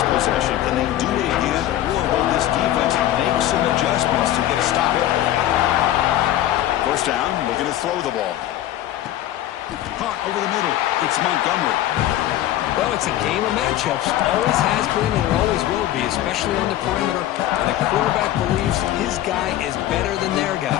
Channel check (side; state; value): right; quieter; 13.2 dB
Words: possession. Can they do it again? Or will this defense make some adjustments to get a stop? First down, looking to throw the ball. Caught over the middle. It's Montgomery. Well, it's a game of matchups. Always has been and it always will be, especially on the perimeter. And the quarterback believes his guy is better than their guy.